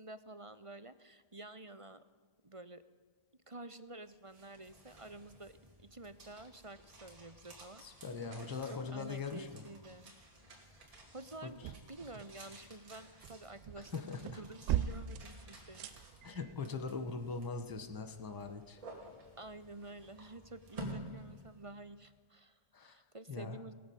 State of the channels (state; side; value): late; left; 1.5 ms